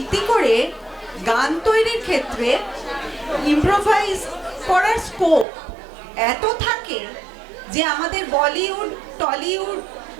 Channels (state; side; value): drops out; left; at 5.5 s